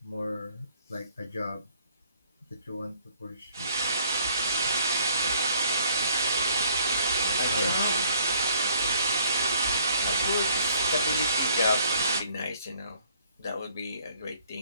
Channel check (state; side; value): inverted; both; correlation -0.60